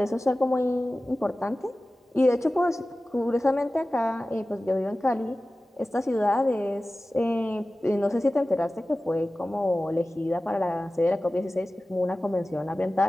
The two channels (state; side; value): normal; both; correlation 0.96